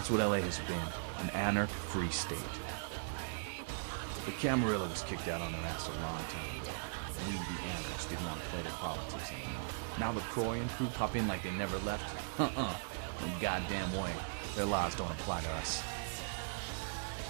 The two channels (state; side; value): silent; left; digital silence